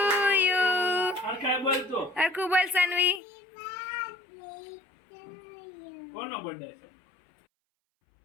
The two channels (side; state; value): right; drops out; at 3.2 s